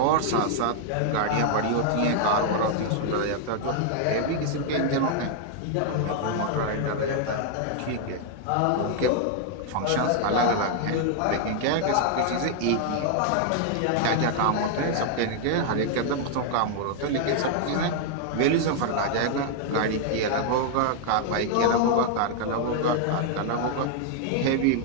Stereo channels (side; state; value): both; different; correlation 0.00